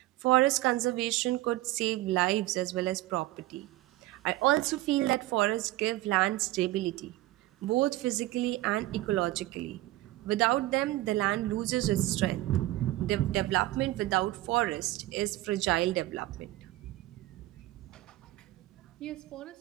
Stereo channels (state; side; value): quieter; left; 17.1 dB